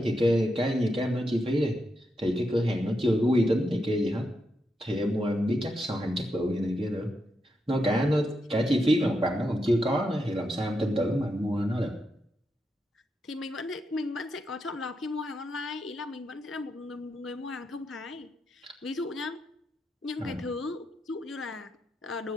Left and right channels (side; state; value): both; normal; correlation 0.84